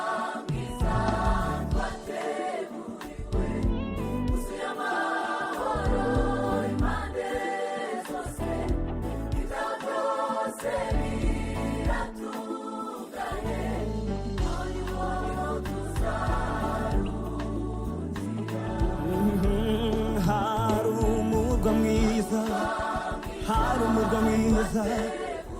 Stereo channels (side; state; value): both; identical; correlation 1.00